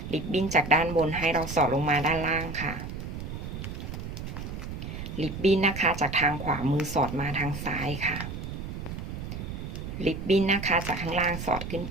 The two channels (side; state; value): right; noise; rumble, 7 dB below the sound